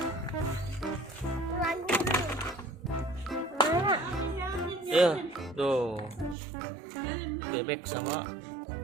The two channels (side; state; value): left; drops out; at 6.4 s